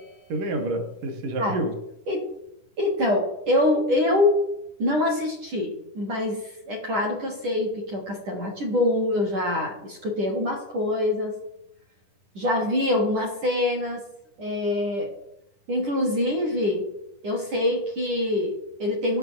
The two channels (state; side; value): late; left; 10 ms